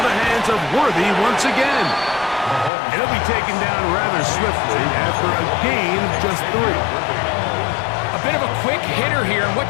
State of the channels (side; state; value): right; drops out; at 2.7 s